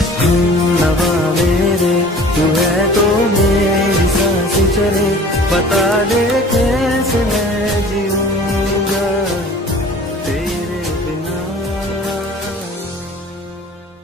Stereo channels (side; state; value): both; normal; correlation 0.45